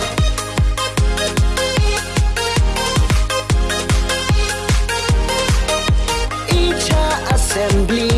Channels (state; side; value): identical; both; correlation 1.00